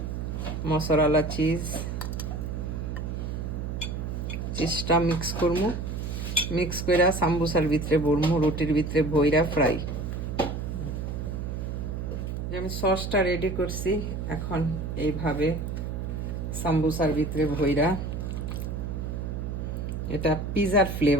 মশালা চিজটা মিক্স করবো। মিক্স করে সাম্বুসার ভিতরে ভরবো, রুটির ভিতরে ভইরা ফ্রাই। আমি সসটা রেডি করছি, এখন এইভাবে সাম্বুসার ভিতরে ভইরা, এটা পিজার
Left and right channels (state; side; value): noise; right; hum, 4 dB below the sound